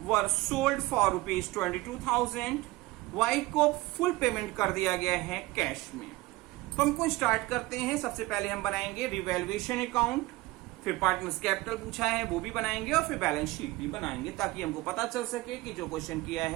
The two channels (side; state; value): left; quieter; 20.1 dB